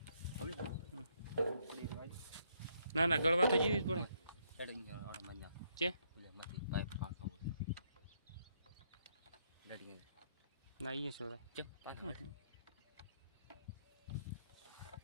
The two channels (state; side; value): inverted; both; correlation -0.72